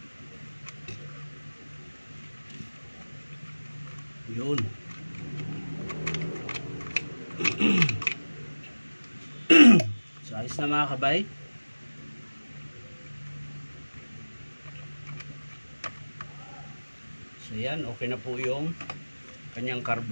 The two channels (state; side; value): inverted; both; correlation -1.00